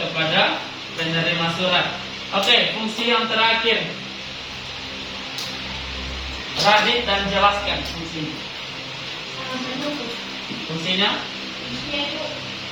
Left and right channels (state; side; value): identical; both; correlation 1.00